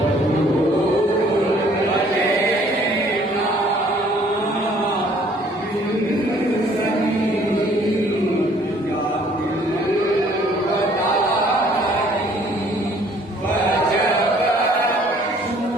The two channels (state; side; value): normal; both; correlation 0.58